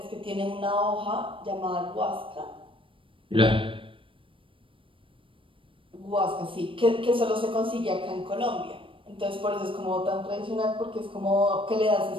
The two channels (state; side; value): late; left; 0.25 ms